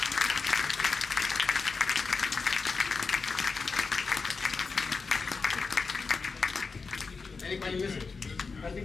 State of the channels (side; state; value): right; quieter; 4.6 dB